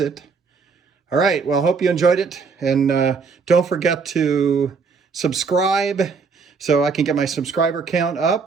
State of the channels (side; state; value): left; quieter; 5.1 dB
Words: All right, well, hope you enjoyed it. And don't forget to subscribe so I can get my subscriber count